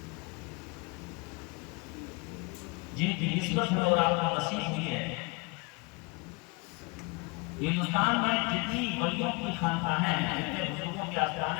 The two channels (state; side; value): quieter; right; 26.9 dB